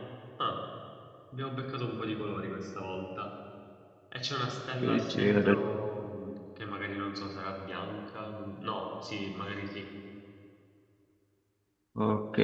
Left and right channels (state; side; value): identical; both; correlation 1.00